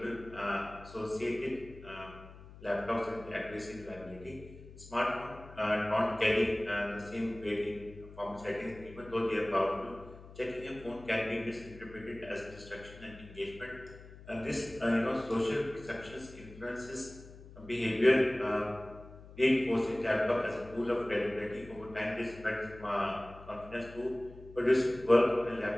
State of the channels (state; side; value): noise; left; hum, 17 dB below the sound